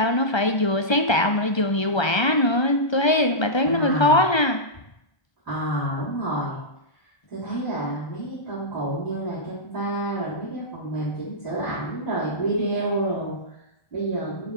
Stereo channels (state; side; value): late; right; 1.3 ms